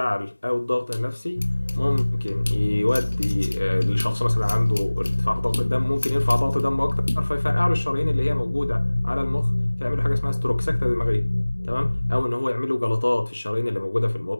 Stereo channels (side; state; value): both; inverted; correlation -1.00